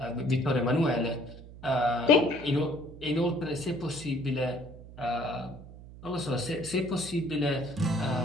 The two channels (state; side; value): noise; right; hum, 16 dB below the sound